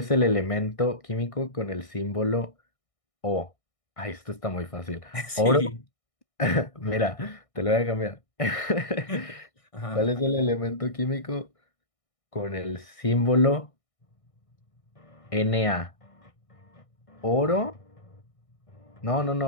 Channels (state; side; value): late; right; 1.6 ms